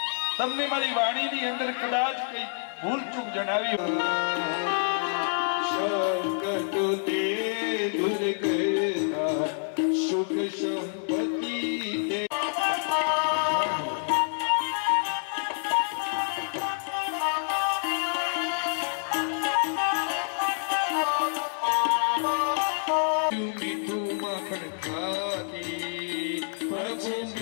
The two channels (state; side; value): silent; right; digital silence